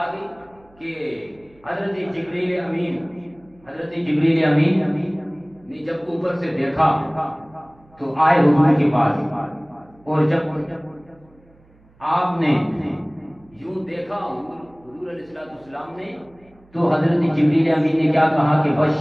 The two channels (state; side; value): noise; right; hum, 30 dB below the sound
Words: گئی کہ حضرت جبریل امین نے جب اوپر سے دیکھا تو آئے حضور کے پاس. اور جب آپ نے یوں دیکھا حضور علیہ السلام نے تو حضرت جبریل امین نے کیا کہا کہ